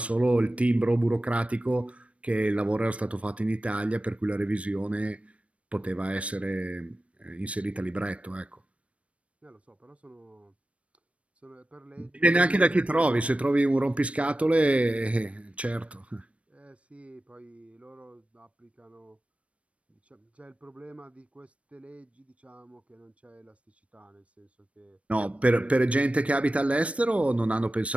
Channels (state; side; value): late; left; 0.063 ms